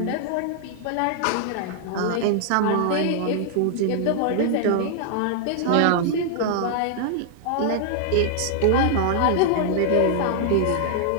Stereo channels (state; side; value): different; both; correlation -0.01